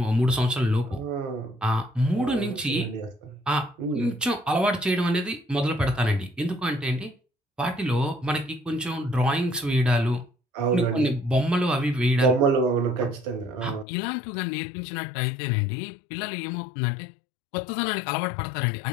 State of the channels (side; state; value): right; drops out; at 13.9 s